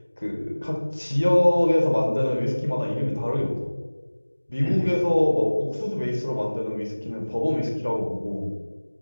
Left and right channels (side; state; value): both; inverted; correlation -1.00